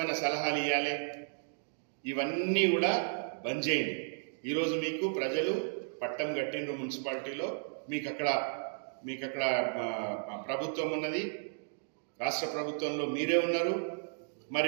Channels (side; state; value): left; silent; digital silence